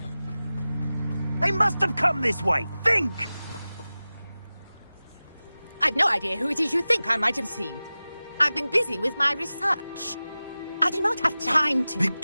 They must have come this way. Think! I've no idea who it is you think I might have seen. I've been busy with my research. I do not have time to...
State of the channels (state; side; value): inverted; both; correlation -0.96